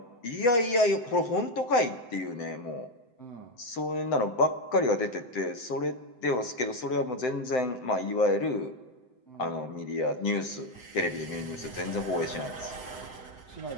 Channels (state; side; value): late; right; 7.8 ms